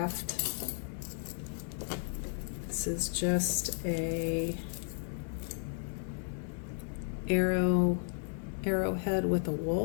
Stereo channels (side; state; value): right; silent; digital silence